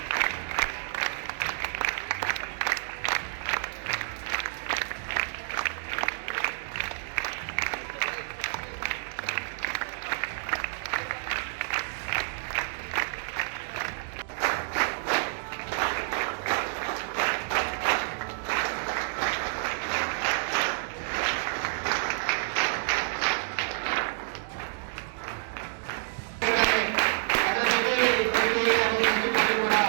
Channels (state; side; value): silent; left; digital silence